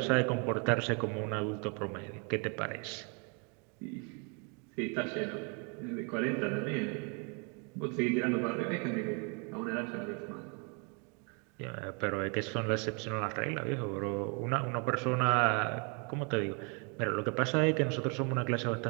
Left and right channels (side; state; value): left; quieter; 35.2 dB